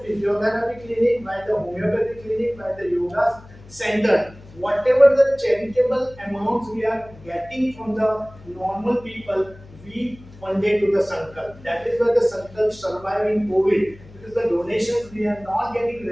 clinic, by the homeopathy clinic, by the yoga center. Whatever the charitable amounts we are getting from the normal people, we funded to the Sankalp. That is why the Sankalp survive in COVID. Because the donations we are not getting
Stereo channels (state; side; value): noise; left; hum, 21 dB below the sound